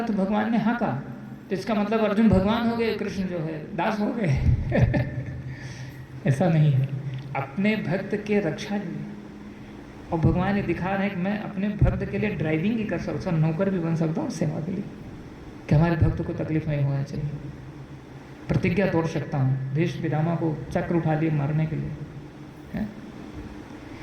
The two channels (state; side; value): identical; both; correlation 1.00